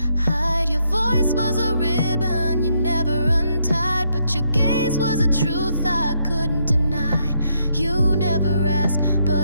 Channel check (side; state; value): both; inverted; correlation -0.76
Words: hide. Your voice was a ribbon you never untied, but your gaze was a truth I couldn't deny. You never asked,